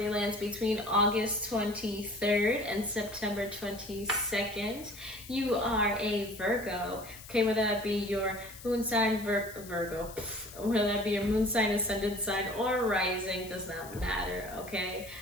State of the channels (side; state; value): left; noise; hiss, 16 dB below the sound